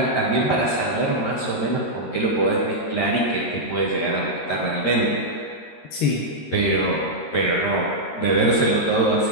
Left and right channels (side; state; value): right; late; 13 ms